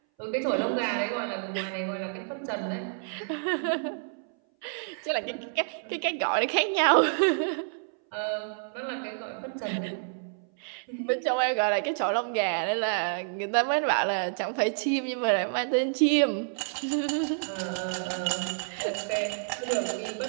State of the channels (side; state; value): left; silent; 59 dB below the other